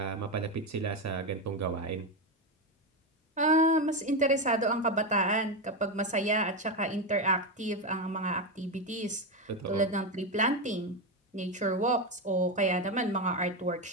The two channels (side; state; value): both; normal; correlation 0.12